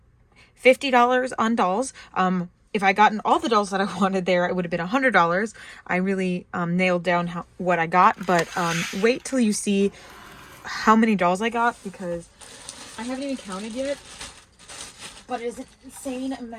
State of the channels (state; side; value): identical; both; correlation 1.00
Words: $50 on dolls. If I gotten all the dolls that I wanted there, it would have been $100. I really nailed down what I got, but wait till you see how many dolls I got because I haven't even counted yet. But it is an insane